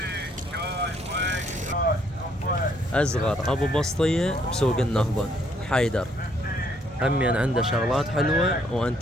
أصغر أبو بسطية بسوق النهضة حيدر همين عنده شغلات حلوة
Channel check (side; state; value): both; normal; correlation 0.68